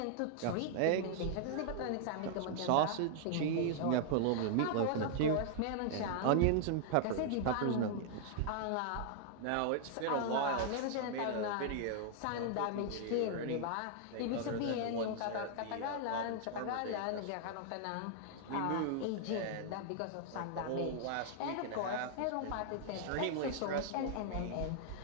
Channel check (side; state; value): both; different; correlation -0.01